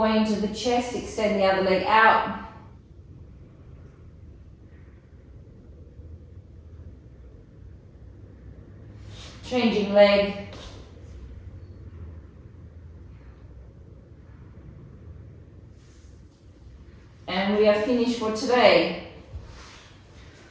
into the chest, extend the other leg out. Changing leg. And we are finished for today.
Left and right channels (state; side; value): identical; both; correlation 1.00